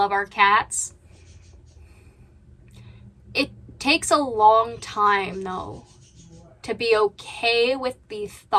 our cats. It takes a long time, though, to be okay with the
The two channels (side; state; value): both; identical; correlation 1.00